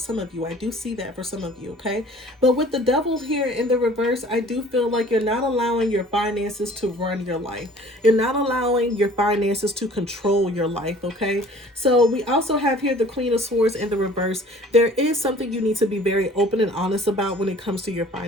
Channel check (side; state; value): both; normal; correlation 0.50